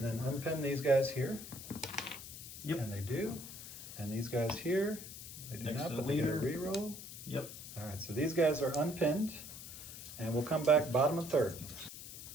then unpin these guys here. Yep. And they do. And these guys here, they do Next not, to but the they get a leader. reroll. Yep. All right, so these guys are unpinned, and we'll come back bottom of 3rd.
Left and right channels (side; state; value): left; noise; hiss, 12 dB below the sound